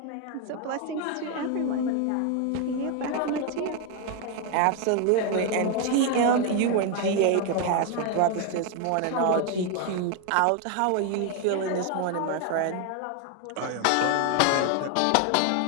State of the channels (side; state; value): both; different; correlation 0.01